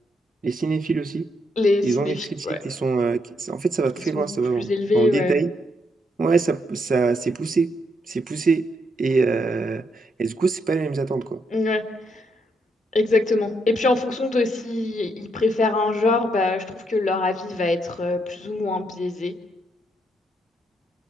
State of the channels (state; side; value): normal; both; correlation 0.77